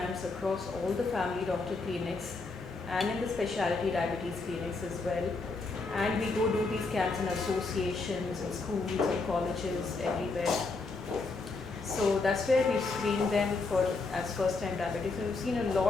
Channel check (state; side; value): quieter; right; 3.8 dB